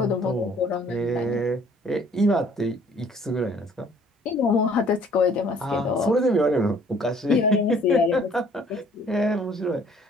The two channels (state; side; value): normal; both; correlation 0.58